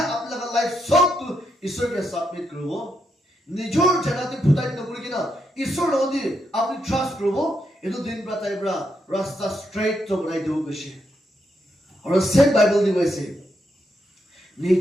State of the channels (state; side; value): normal; both; correlation 0.80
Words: আপনা লাইফ সব তো ঈশ্বর কে সাবমিট করব নিজর জানাতে ফুটাই নকৰি কিনা ঈশ্বৰ নদি আপনি ট্ৰাস্ট কৰব এটো দিন পৰা তাই পৰা ৰাস্তা স্ট্ৰেইট তো বনাই দিব কৈছে আৰু সেম বাইবেল দি কৈছে